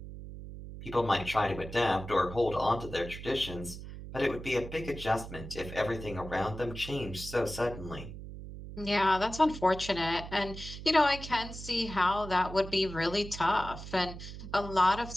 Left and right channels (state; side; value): noise; right; hum, 11 dB below the sound